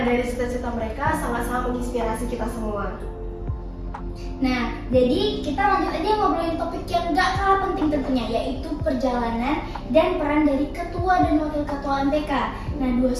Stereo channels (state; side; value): identical; both; correlation 1.00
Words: dari cita-cita mereka sangat-sangat menginspirasi kita semua. Nah, jadi kita lanjut aja ngobrolin topik yang gak kalah penting tentunya, yaitu perjalanan dan peran dari ketua dan wakil ketua MPK. Nah, dua